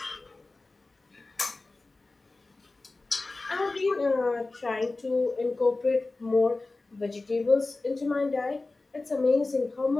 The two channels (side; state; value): right; quieter; 3.3 dB